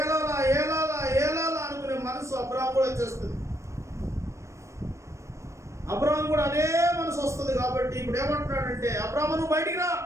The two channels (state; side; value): late; left; 0.14 ms